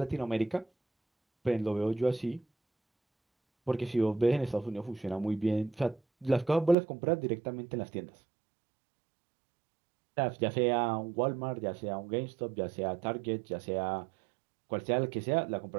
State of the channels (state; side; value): drops out; left; at 6.8 s